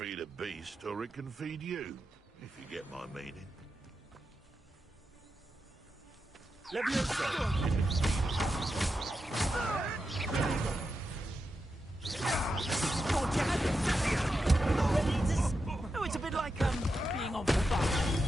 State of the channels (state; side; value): normal; both; correlation 0.88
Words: a beast, or it can feed you, if you get my meaning. Oh, it's a bit like being on fire,